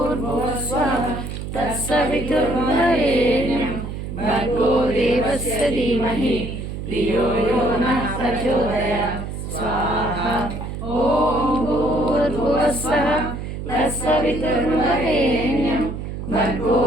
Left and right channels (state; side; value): noise; right; hum, 7 dB below the sound